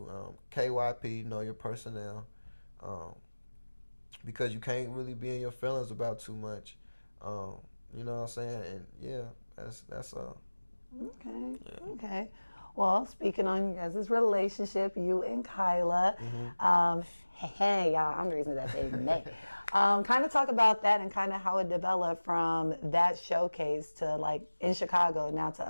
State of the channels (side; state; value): both; inverted; correlation -1.00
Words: KYP, know your personnel. Because you can't really be in your feelings about too much. You know what I'm saying? And yeah, that's Okay. Yeah. Okay. Well, speaking on you guys' relationship, you and Kyla, hey, y'all, I'm the reason that they met. Kind of talk about that and kind of how it developed from that showcase to like in Chicago now to